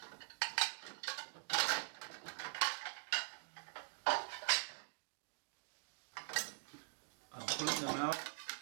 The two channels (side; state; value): left; silent; digital silence